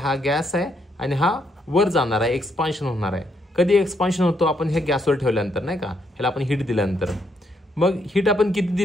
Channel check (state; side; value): normal; both; correlation 0.75